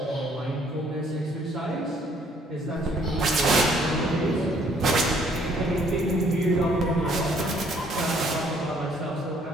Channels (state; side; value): normal; both; correlation 0.63